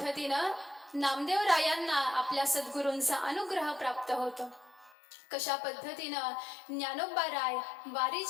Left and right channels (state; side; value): drops out; right; at 5.0 s